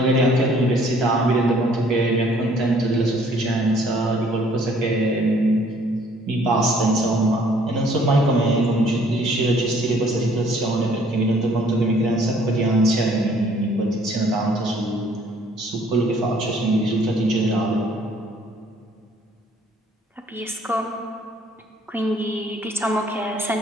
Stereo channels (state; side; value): normal; both; correlation 0.60